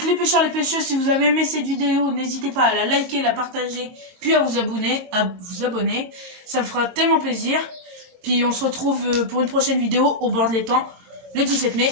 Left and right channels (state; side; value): late; left; 22 ms